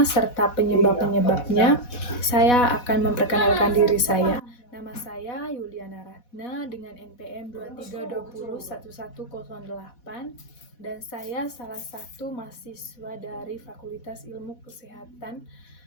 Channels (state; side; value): late; right; 4.1 ms